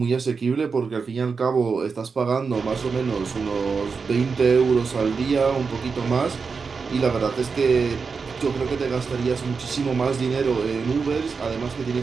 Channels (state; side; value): quieter; left; 5.1 dB